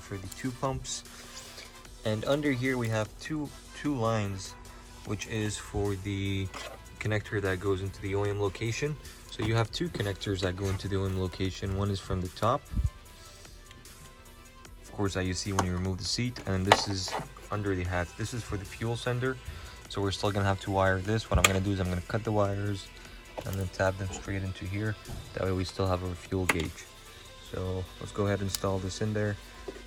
the two pumps. And under here we have two lines, which is for the connector that goes into the OEM location. So you have two connectors that go into the OEM location. One is from the top, of course, that you see when you remove the seat, and this is under the hat. This is for the fuel sender, so we're still gonna have to wire this. What I'm gonna do is I'm gonna cut the wires and then tap them straight into here. That way we still have our fuel gauge. So let's go ahead and install this in there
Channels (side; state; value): both; identical; correlation 1.00